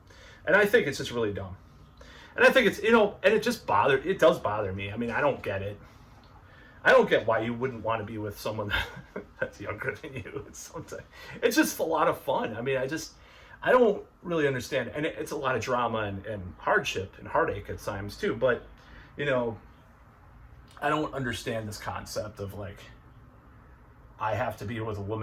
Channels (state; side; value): identical; both; correlation 1.00